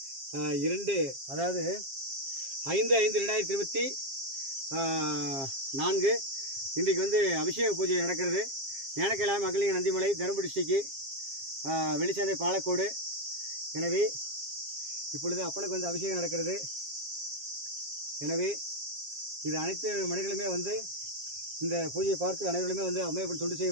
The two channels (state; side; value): late; left; 7.4 ms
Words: 5/5/2024 இன்றைக்கு வந்து அபிஷேக பூஜை நடக்கிறது. ஞானக்கைலாய மகளிர் நந்திமலை தருமபுரி டிஸ்ட்ரிக்ட் வெளிச்சந்தை பாலக்கோடு. எனவே இப்பொழுது அப்பனுக்கு வந்து அபிஷேகம் நடக்கிறது. எனவே இது அனைத்து மனிதர்களுமே வந்து இந்த பூஜையை பார்த்து அனைவருமே வந்து அம்மையப்பன் தொண்டு செய்ய